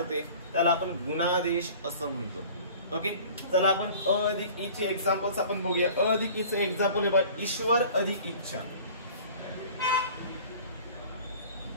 त्याला आपण गुणादेश असं म्हणतो. ओके, चला आपण अ अधिक ई चे एक्झाम्पल्स आपण बघूया. अ अधिक ई चे एक्झाम्पल बघा, ईश्वर अधिक इच्छा.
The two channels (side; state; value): both; inverted; correlation -0.45